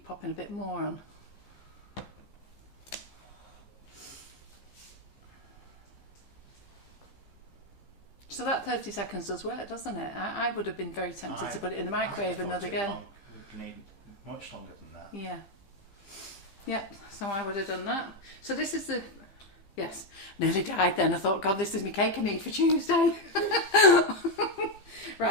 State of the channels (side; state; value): right; late; 15 ms